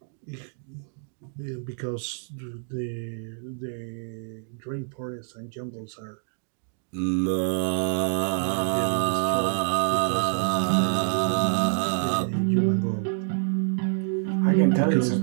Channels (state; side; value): silent; left; digital silence